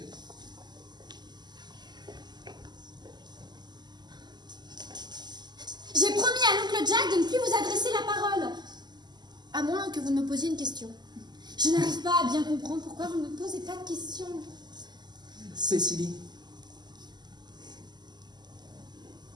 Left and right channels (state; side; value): late; left; 0.21 ms